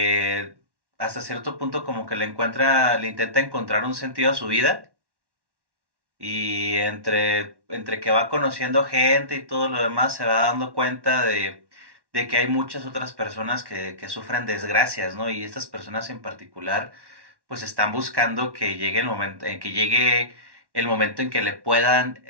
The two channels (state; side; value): late; left; 1.1 ms